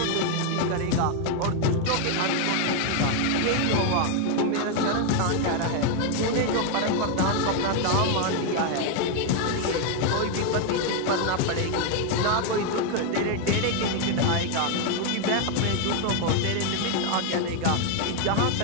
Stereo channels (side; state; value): both; different; correlation 0.01